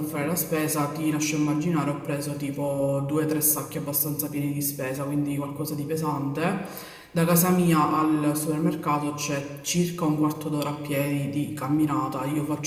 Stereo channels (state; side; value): identical; both; correlation 1.00